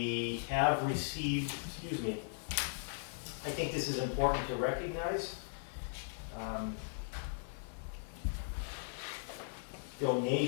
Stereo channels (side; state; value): right; silent; digital silence